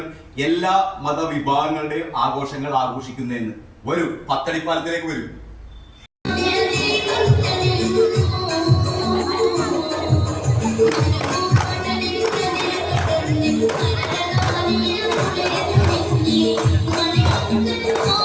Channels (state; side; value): identical; both; correlation 1.00